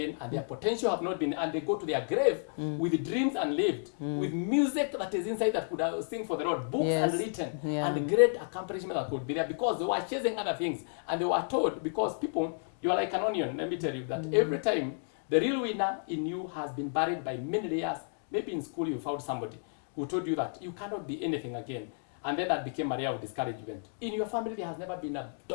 and their potential have not been, and they go to their grave with dreams unlived, with music that is inside that could sing for the Lord, books unwritten, and great accomplishment that could be there, because they were chasing other things. And they were told, because people, you are like an onion, let me tell you, that every time the real winner in you has been buried by many layers. Maybe in school you found somebody who told you that you cannot be anything again. And then that became a layer of discouragement. In your family, there has never been a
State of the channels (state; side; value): silent; right; digital silence